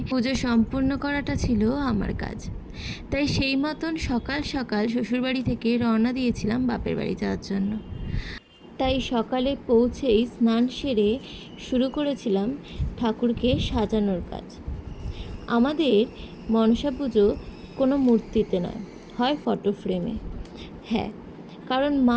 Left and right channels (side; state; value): both; identical; correlation 1.00